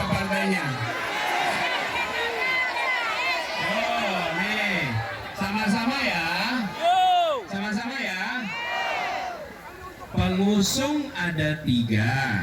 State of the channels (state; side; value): identical; both; correlation 1.00